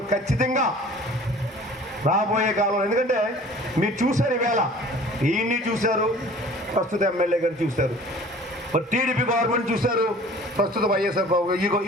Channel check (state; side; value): normal; both; correlation 0.47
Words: ఖచ్చితంగా రాబోయే కాలంలో, ఎందుకంటే మీరు చూశారు ఈవేళ ఈయన్ని చూశారు, ప్రస్తుత ఎమ్మెల్యే గారు చూశారు, మరి టీడీపీ గవర్నమెంట్ చూశారు, ప్రస్తుత వైఎస్ఆర్